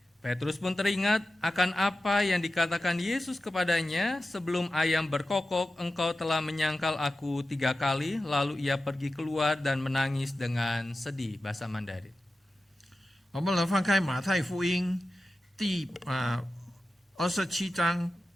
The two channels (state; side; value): normal; both; correlation 0.93